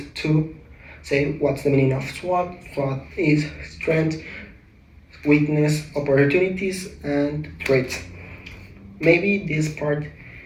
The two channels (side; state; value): both; identical; correlation 1.00